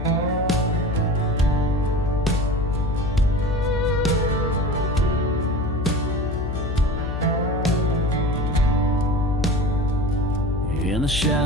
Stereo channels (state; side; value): noise; left; hum, 3 dB below the sound